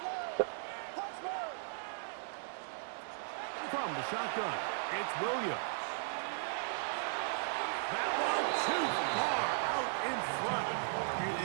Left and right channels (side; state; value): left; silent; digital silence